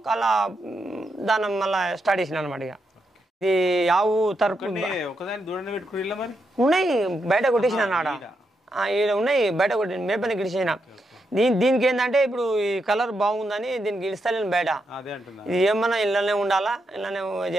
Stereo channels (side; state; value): both; normal; correlation 0.83